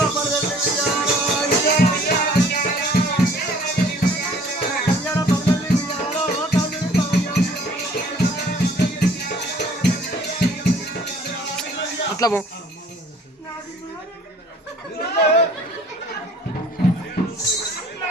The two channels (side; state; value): both; normal; correlation 0.54